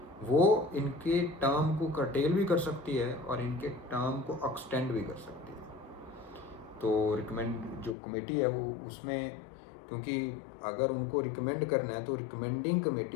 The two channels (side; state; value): right; drops out; at 8.0 s